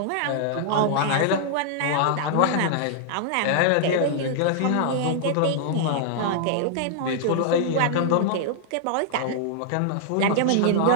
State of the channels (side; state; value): both; different; correlation -0.01